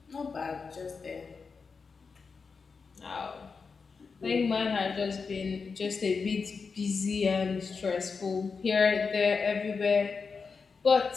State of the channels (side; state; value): right; quieter; 5.1 dB